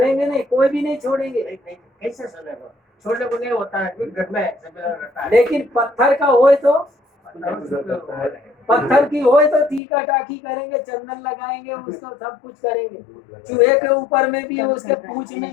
नहीं, कोई भी नहीं छोड़ेंगे। कैसे छोड़ने को नहीं होता है घर में, लेकिन पत्थर का होए तो, पत्थर की होए तो टीका टाकी करेंगे, चंदन लगाएंगे, उसको सब कुछ करेंगे। चूहे के ऊपर में भी, उसके पूंछ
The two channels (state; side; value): drops out; right; at 9.8 s